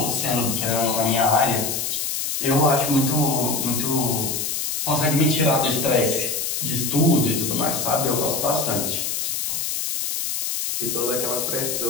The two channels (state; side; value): noise; left; hiss, 2 dB below the sound